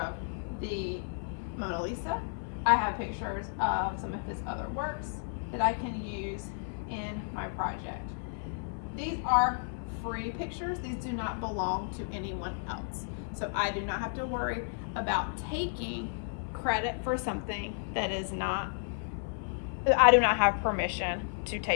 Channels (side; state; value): right; silent; 56 dB below the other